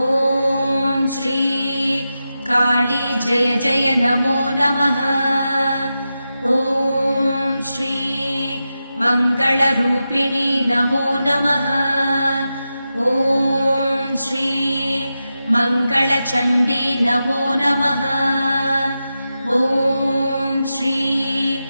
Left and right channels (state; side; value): inverted; both; correlation -0.91